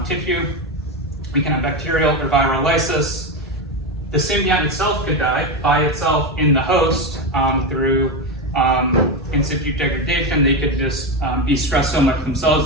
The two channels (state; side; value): normal; both; correlation 0.14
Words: tissue. We can have bacterial or viral lysis. The symbiont itself could die by itself in the host through in situ degradation. They could just be stressed so much